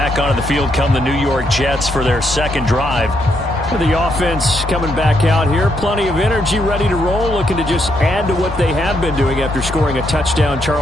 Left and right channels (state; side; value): normal; both; correlation 0.77